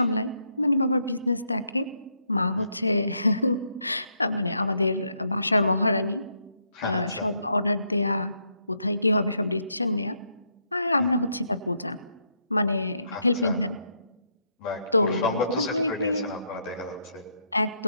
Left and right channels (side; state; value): both; inverted; correlation -0.76